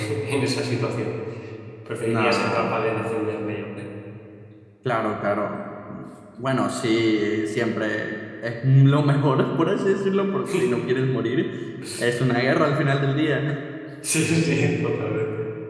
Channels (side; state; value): both; identical; correlation 1.00